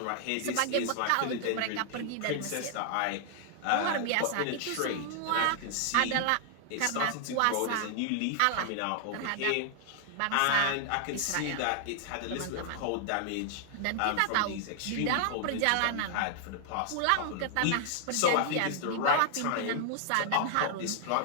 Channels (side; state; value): both; different; correlation 0.00